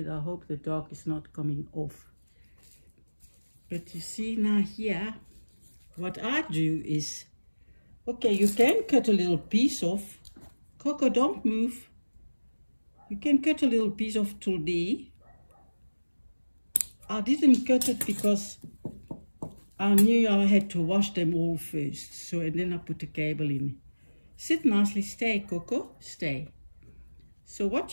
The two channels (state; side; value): inverted; both; correlation -1.00